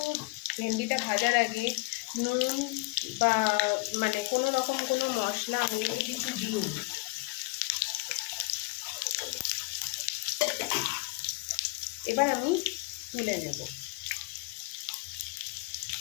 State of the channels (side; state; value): right; quieter; 27.3 dB